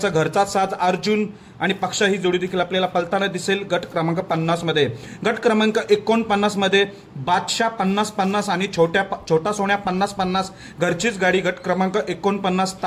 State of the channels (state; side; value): identical; both; correlation 1.00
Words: घरचा साज अर्जुन आणि पक्षा ही जोडी देखील आपल्याला पळताना दिसेल गट क्रमांक 50 मध्ये। गट क्रमांक 49 मध्ये बादशाह 50-50 आणि छोटा सोन्या 50-50 घरचीच गाडी गट क्रमांक 49